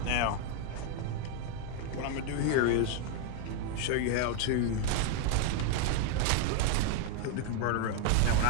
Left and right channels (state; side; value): different; both; correlation 0.00